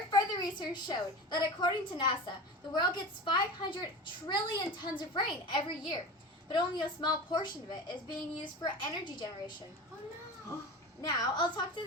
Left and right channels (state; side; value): normal; both; correlation 0.31